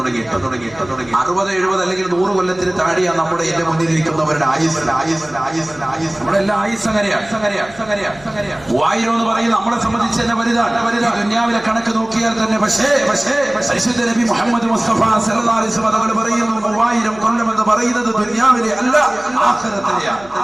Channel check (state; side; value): noise; left; hum, 23 dB below the sound